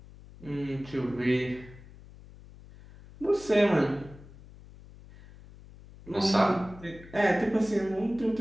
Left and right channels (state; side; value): noise; left; hum, 20 dB below the sound